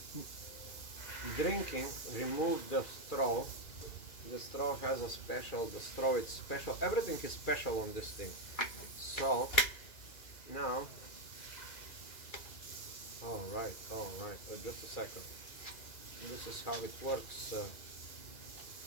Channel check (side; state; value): right; late; 2.4 ms